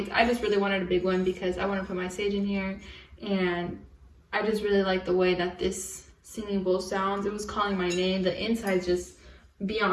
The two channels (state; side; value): identical; both; correlation 1.00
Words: I just really wanted a big one because I want to put my sage in here. And I just really like the way that this singing bowl sounds. It was calling my name. The inside's just